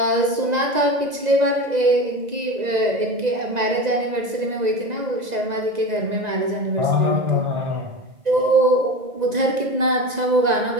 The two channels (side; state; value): left; late; 2.0 ms